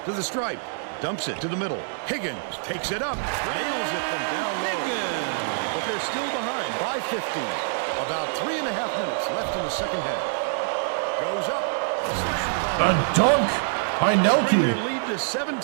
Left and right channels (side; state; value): left; silent; digital silence